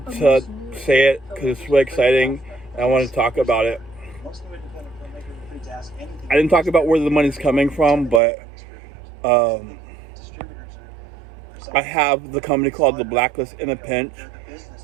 to say it because it's really exciting and I wanted to talk about it. I didn't talk about where the money's coming from, but I have the company called The Blacklist in a Pinch.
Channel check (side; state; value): left; drops out; at 8.2 s